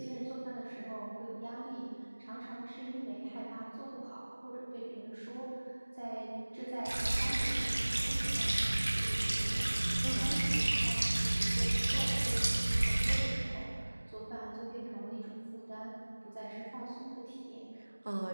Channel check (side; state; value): both; inverted; correlation -1.00